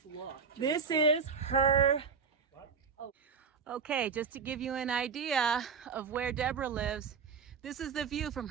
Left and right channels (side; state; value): left; quieter; 5.9 dB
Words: locked. This is her. Okay, just to give you an idea of where Deborah lives, this is the view from